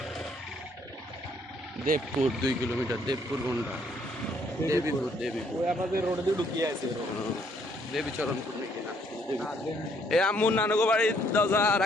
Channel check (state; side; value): normal; both; correlation 0.67